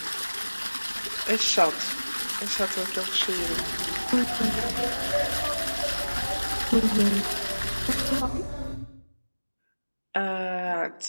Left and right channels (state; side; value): inverted; both; correlation -1.00